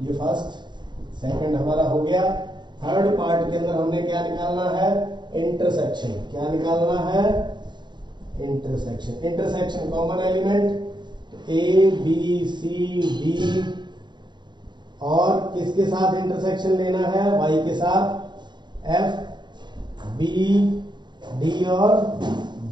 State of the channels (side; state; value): left; late; 0.22 ms